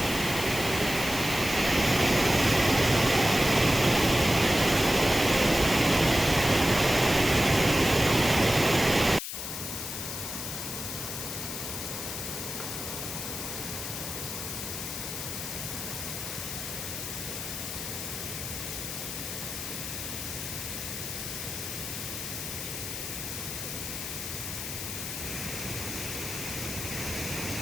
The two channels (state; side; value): noise; left; hiss, 6 dB below the sound